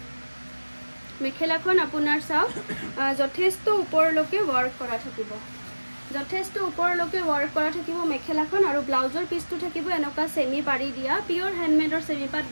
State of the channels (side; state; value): both; inverted; correlation -1.00